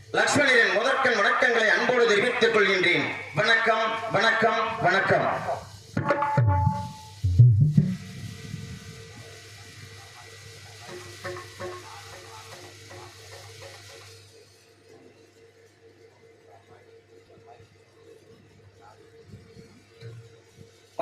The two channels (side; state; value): both; identical; correlation 1.00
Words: லக்ஷ்மணரின் முதற்கண் வணக்கங்களை அன்போடு தெரிவித்துக் கொள்கின்றேன். வணக்கம், வணக்கம், வணக்கம்.